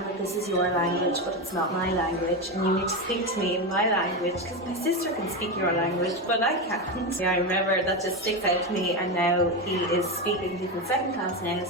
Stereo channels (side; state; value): both; normal; correlation 0.15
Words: that this is your language, but it's not my language, and you need to speak to me in my language because my sister can speak your language, but I can't. Yeah, I remember that just sticks out to me, and now he is speaking, he's in 2nd class now,